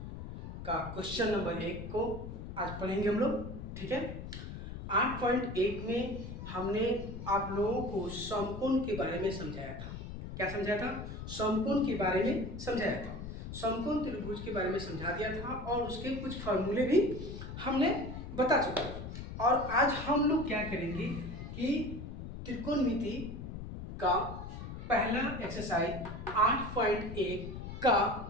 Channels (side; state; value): left; noise; rumble, 9 dB below the sound